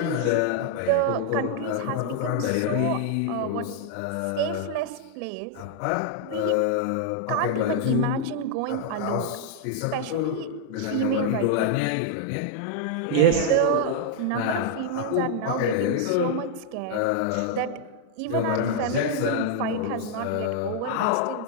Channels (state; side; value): different; both; correlation -0.01